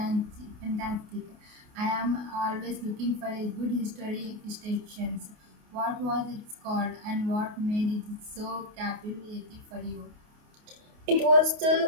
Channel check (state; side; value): late; left; 28 ms